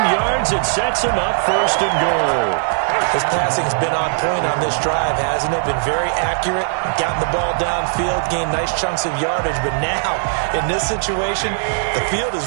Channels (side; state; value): left; silent; digital silence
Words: It sets them up 1st and goal. His passing's been on point on this drive, hasn't it? Been very accurate, gotten the ball downfield, gained nice chunks of yardage. But now, in this situation, the field is